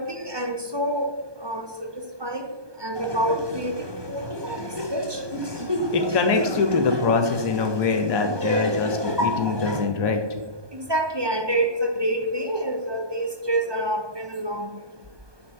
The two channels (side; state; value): left; late; 1.2 ms